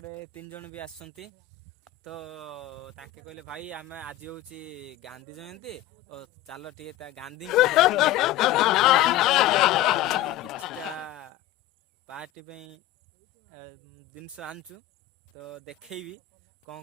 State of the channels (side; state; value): right; quieter; 13.4 dB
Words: 3 जन भी आसछंती। तो ताके कहले भाई आम आज हूँ गांधी जयंती और चलो टे गांधी किछटा पार्टी जिनस आनचु। तो देखी